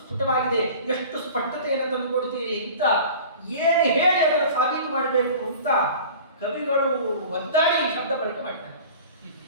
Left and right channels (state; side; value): inverted; both; correlation -0.41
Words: ಎಷ್ಟು ಸ್ಪಷ್ಟತೆಯನ್ನು ತಂದುಕೊಡ್ತೀರಿ ಅಂತ ಏನು ಹೇಳಿ ಅದನ್ನು ಸಾಬೀತು ಮಾಡಬೇಕು ಅಂತ ಕವಿಗಳು ಒದ್ದಾಡಿ ಶಬ್ದ ಬಳಕೆ ಮಾಡ್ತಾರೆ.